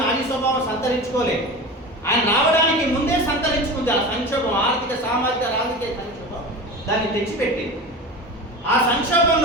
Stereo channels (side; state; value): both; normal; correlation 0.30